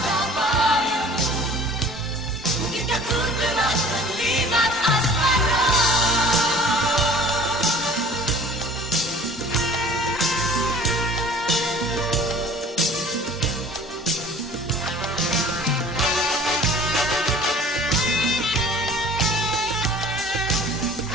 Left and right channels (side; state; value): both; normal; correlation 0.47